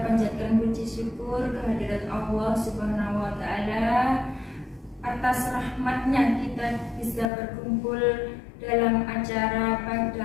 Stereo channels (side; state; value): right; drops out; at 7.3 s